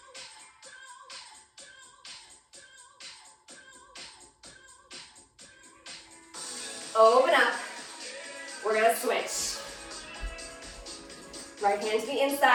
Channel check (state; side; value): identical; both; correlation 1.00